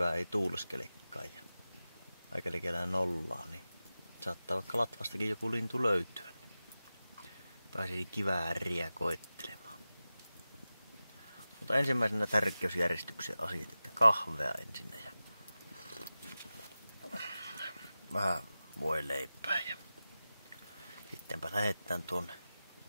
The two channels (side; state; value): both; inverted; correlation -0.95